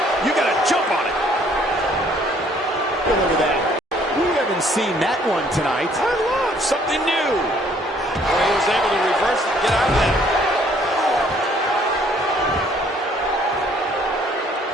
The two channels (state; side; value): normal; both; correlation 0.62